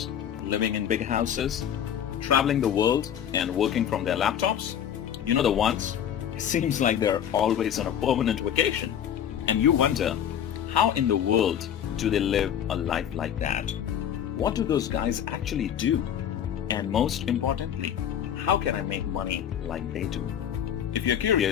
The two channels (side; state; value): right; quieter; 9.5 dB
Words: living in big houses, traveling the world and working from their laptops? You know the ones? It seems like they're always on a permanent vacation. And you wonder, how in the world do they live a life like that? What do those guys actually do? And most importantly, how can I make money like they do? If you're